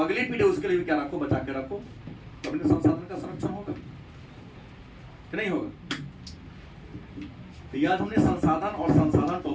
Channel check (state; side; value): identical; both; correlation 1.00